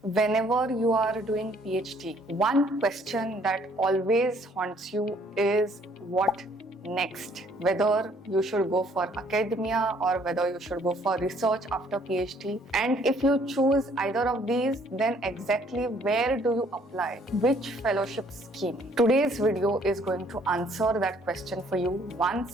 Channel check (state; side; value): normal; both; correlation 0.62